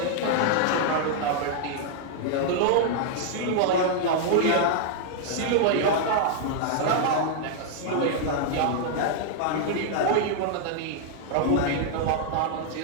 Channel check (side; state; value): both; different; correlation -0.01